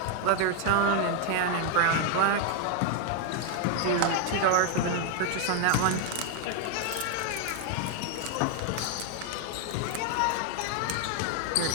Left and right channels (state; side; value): different; both; correlation 0.01